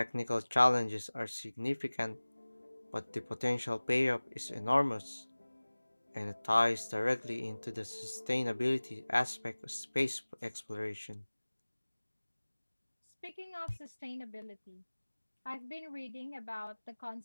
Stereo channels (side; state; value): both; inverted; correlation -1.00